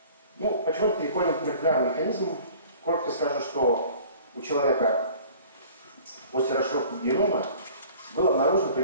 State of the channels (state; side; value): inverted; both; correlation -0.48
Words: Ну, почему переходим к молекулярным механизмам? Коротко скажу, что у человека после расшифровки генома было обнаружено